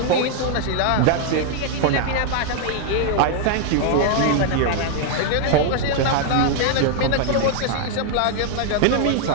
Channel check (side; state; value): both; different; correlation 0.00